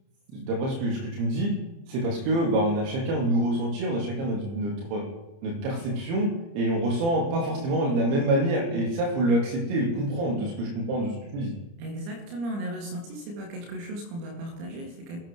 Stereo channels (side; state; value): left; late; 30 ms